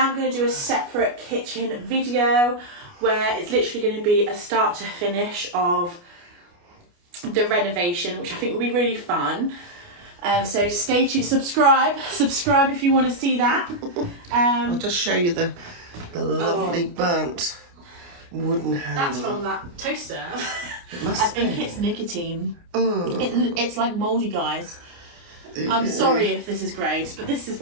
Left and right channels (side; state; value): left; late; 29 ms